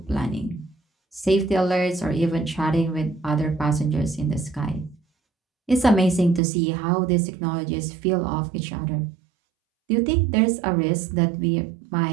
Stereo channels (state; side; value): drops out; left; at 6.4 s